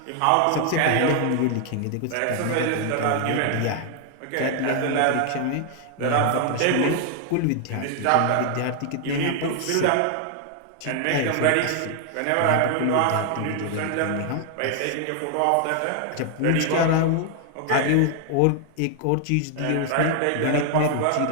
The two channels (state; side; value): different; both; correlation 0.00